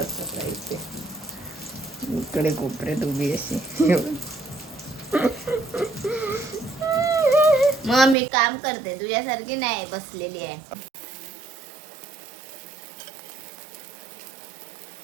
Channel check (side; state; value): left; drops out; at 8.2 s